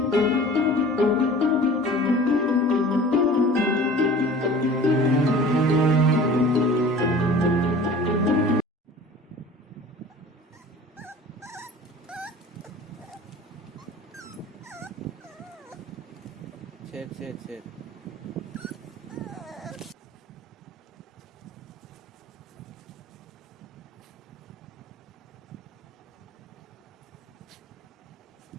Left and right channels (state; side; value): normal; both; correlation 0.43